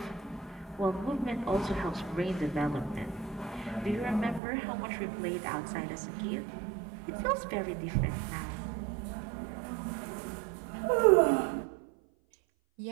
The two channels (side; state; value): left; drops out; at 4.4 s